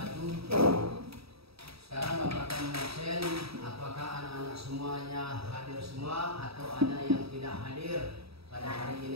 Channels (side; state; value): left; late; 0.77 ms